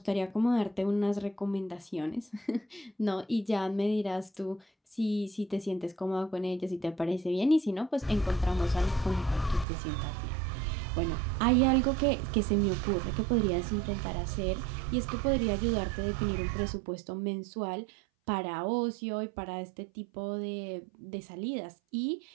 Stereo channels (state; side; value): drops out; left; at 9.7 s